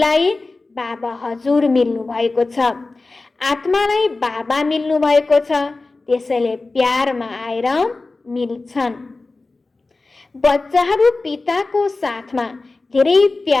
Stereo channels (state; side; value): quieter; right; 3.5 dB